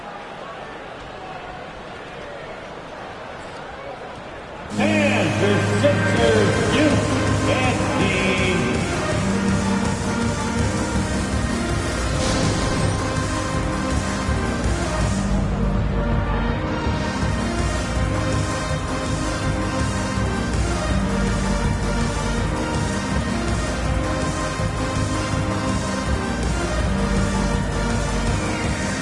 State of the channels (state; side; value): identical; both; correlation 1.00